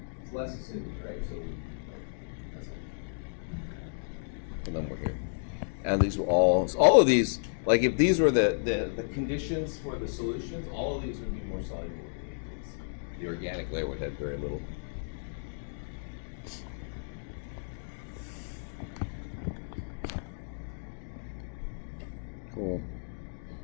It's less acidic, right? So that's it. And then we're here. And these were all of these, like if these were the conditions for the solutions, all of these would be more soluble. The organic layer would have very little. Cool.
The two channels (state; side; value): silent; right; digital silence